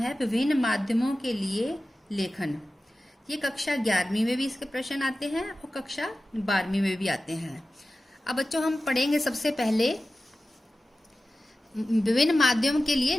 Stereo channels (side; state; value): both; normal; correlation 0.95